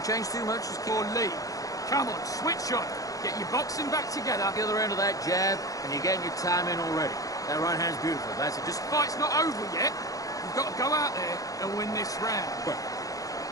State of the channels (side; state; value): right; late; 0.17 ms